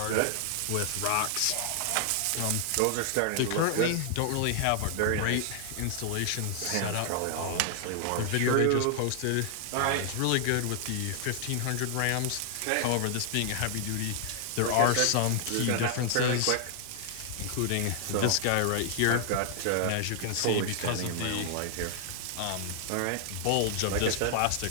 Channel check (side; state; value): both; different; correlation 0.00